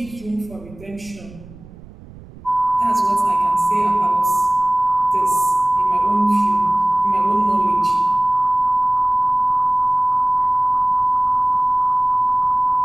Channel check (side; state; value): right; noise; rumble, 20 dB below the sound